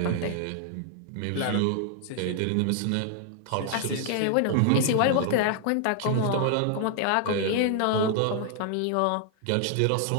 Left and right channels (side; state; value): both; different; correlation 0.00